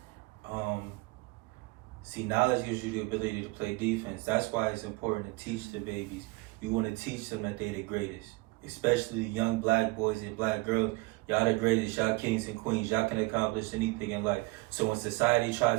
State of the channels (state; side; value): quieter; left; 24.1 dB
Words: See, knowledge gives you the ability to play defense. That's why it's important to teach the babies. You want to teach them that they're the greatest, especially the young black boys and black girls. Y'all the greatest. Y'all kings and queens. Y'all can accomplish anything in life. So when society